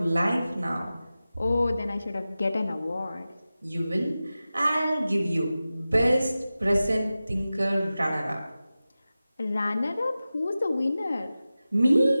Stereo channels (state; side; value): inverted; both; correlation -0.95